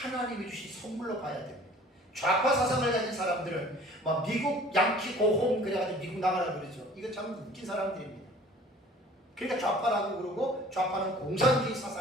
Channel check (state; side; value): normal; both; correlation 0.49